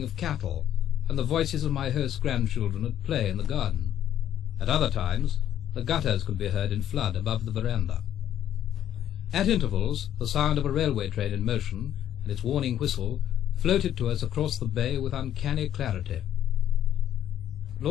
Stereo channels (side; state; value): right; quieter; 11.0 dB